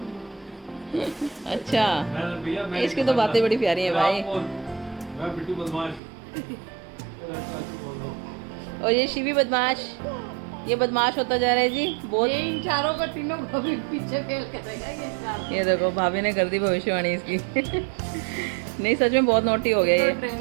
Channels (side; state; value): left; drops out; at 6.0 s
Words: अच्छा, इसकी तो बातें बड़ी प्यारी है भाई। मैं बिट्टू बदमाश। और ये शिवी बदमाश, ये बदमाश होता जा रहा है जी बहुत। ये इन चारों का तीनों को भी पीछे फेल करेगा ये चार। ये देखो भाभी ने कर दी भविष्यवाणी इसकी। नहीं सच में बहुत नोटी हो गया ये।